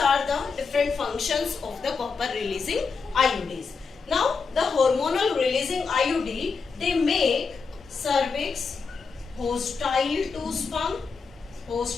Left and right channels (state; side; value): quieter; right; 5.0 dB